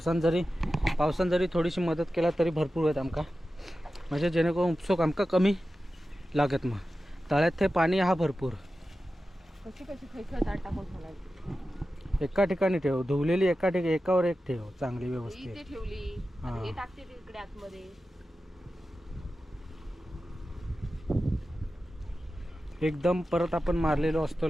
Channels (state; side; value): normal; both; correlation 0.93